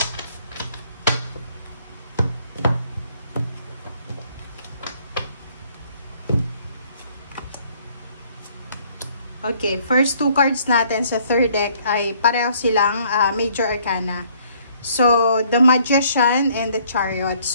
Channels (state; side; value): inverted; both; correlation -0.62